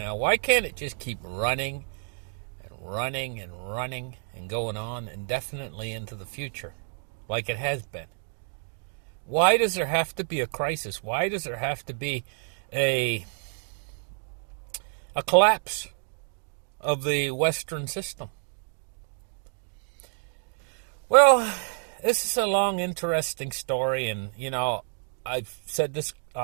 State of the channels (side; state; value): left; silent; 59 dB below the other